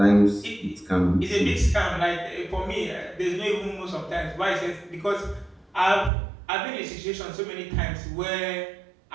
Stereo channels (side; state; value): left; drops out; at 6.1 s